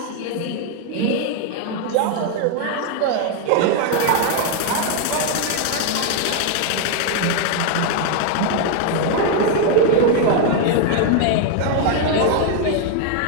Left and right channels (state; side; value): different; both; correlation 0.01